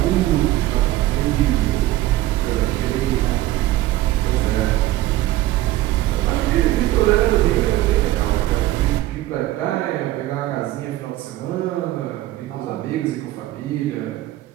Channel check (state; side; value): quieter; left; 15.8 dB